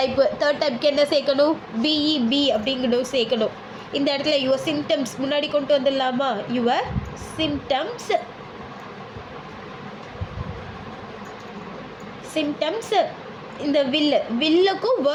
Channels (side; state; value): both; identical; correlation 1.00